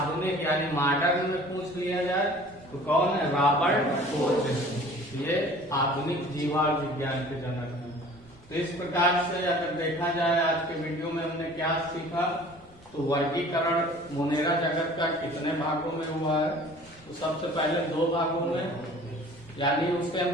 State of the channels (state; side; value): normal; both; correlation 0.47